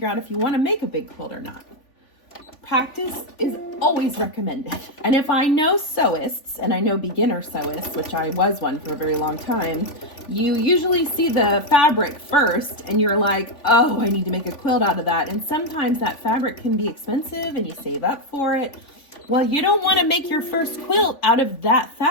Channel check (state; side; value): late; right; 3.5 ms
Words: out if you want to make a big quilt or not. Practice is always recommended. And if I know sewists, and I know beginner sewists, which I was one for a very long time, you usually see the fabric first and you're like, oh, I need to make a quilt out of that. And sometimes that fabric can be expensive and you save up for it. Well, you don't want to make your first quilt out of that